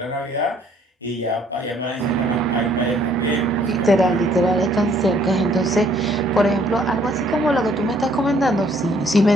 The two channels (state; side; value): normal; both; correlation 0.63